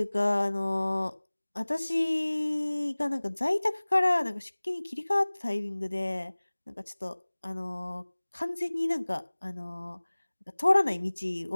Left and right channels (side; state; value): both; inverted; correlation -1.00